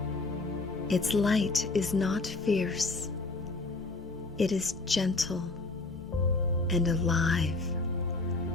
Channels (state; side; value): quieter; right; 3.4 dB